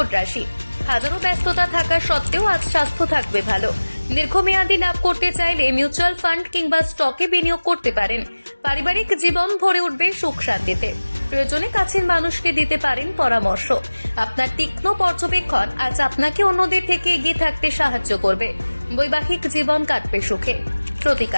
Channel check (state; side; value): inverted; both; correlation -1.00